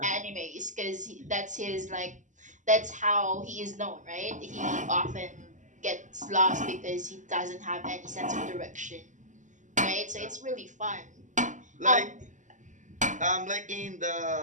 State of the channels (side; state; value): left; late; 0.36 ms